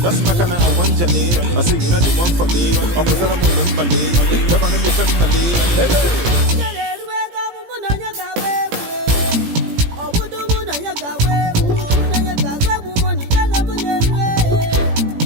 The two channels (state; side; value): late; left; 17 ms